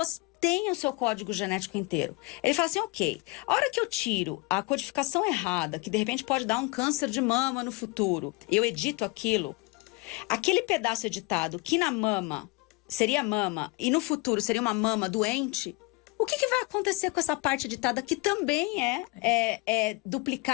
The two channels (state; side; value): quieter; right; 25.3 dB